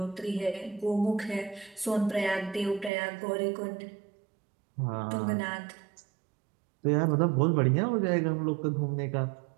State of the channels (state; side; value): drops out; left; at 2.9 s